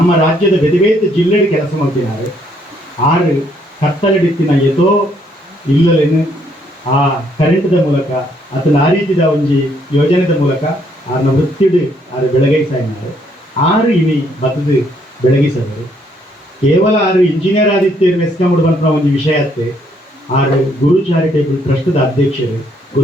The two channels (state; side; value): normal; both; correlation 0.69